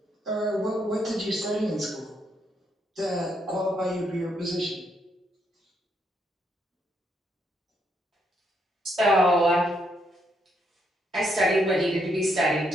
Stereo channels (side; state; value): both; normal; correlation 0.75